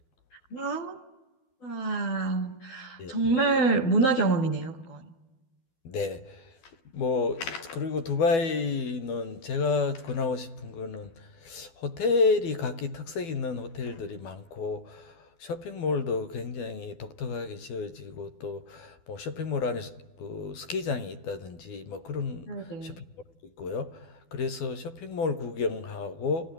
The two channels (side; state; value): right; late; 12 ms